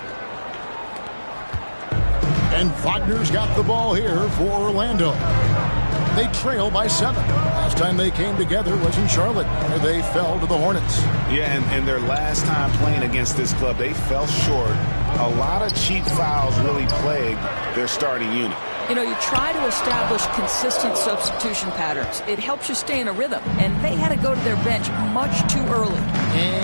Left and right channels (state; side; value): inverted; both; correlation -1.00